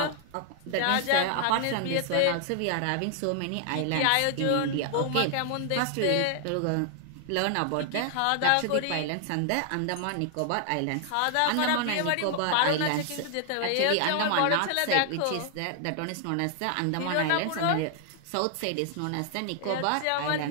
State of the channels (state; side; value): different; both; correlation 0.00